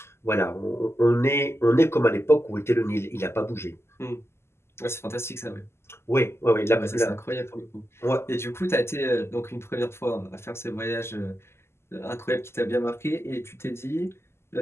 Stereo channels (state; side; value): late; right; 0.12 ms